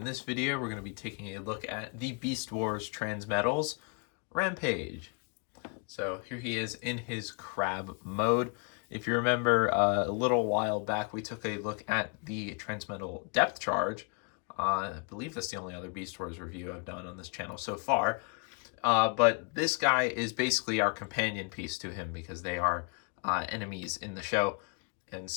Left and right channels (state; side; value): quieter; right; 34.9 dB